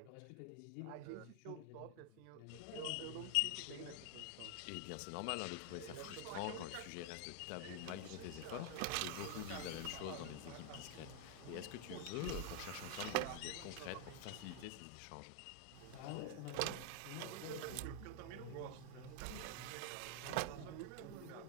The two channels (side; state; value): both; different; correlation 0.00